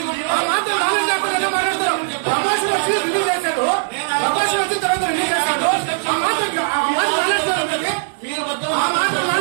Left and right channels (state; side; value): silent; left; 66 dB below the other